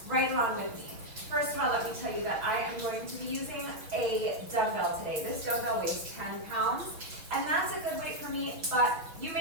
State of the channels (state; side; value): late; left; 5.9 ms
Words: right along with me. First of all, let me tell you that I am going to be using a dumbbell today. This dumbbell weighs 10 pounds, and that's a good weight for me, but you